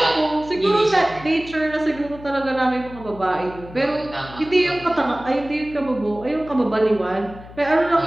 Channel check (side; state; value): left; noise; hum, 17 dB below the sound